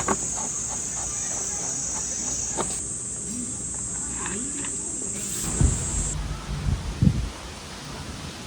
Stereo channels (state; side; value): identical; both; correlation 1.00